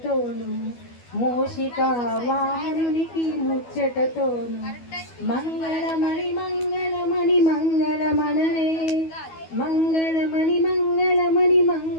మూషికా వాహనునికి ముచ్చటతోను మంగళమణి మంగళమణి మంగళమనరే మంగళమణి మంగళమణి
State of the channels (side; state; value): right; late; 12 ms